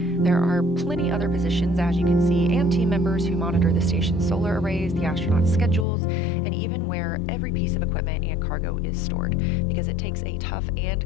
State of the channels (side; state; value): right; drops out; at 5.9 s